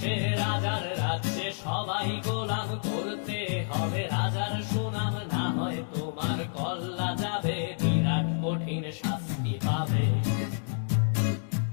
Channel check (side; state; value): right; silent; digital silence